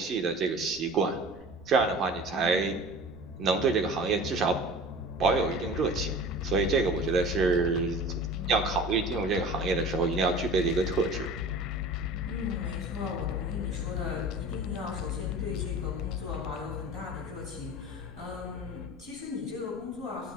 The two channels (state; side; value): noise; right; rumble, 23 dB below the sound